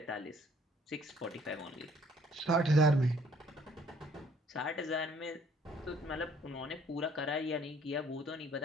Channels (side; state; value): both; normal; correlation 0.60